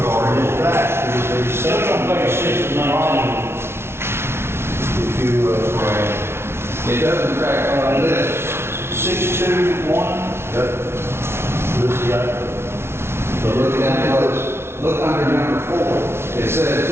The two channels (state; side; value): late; left; 0.12 ms